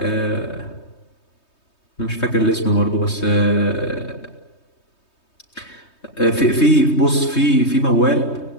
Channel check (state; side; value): late; right; 3.2 ms